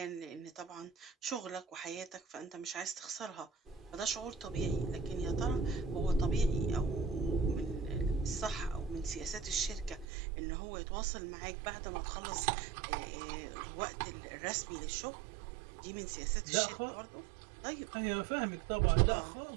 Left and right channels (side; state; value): left; drops out; at 10.1 s